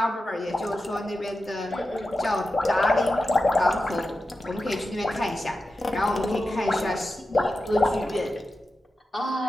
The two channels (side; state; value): both; normal; correlation 0.91